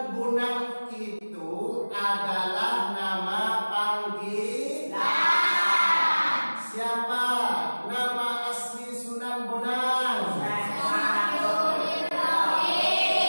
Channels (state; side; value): inverted; both; correlation -1.00